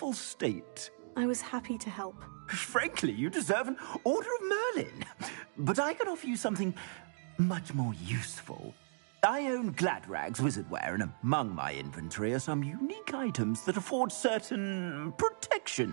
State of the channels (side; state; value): left; silent; digital silence